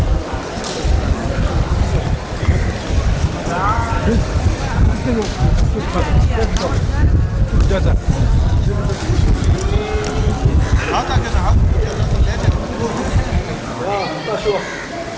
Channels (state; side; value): identical; both; correlation 1.00